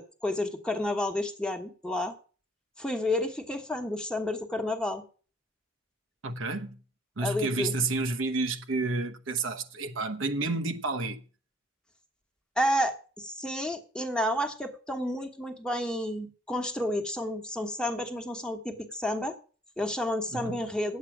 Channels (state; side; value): normal; both; correlation 0.62